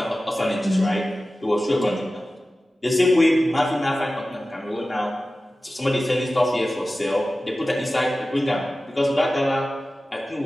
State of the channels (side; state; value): both; normal; correlation 0.95